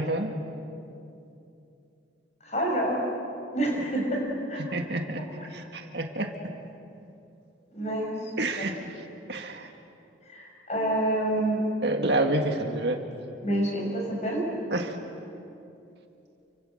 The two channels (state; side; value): normal; both; correlation 0.29